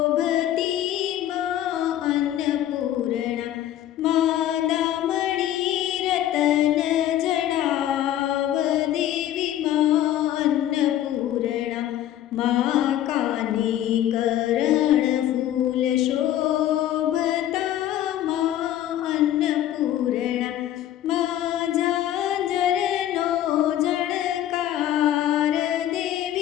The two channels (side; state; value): right; quieter; 12.3 dB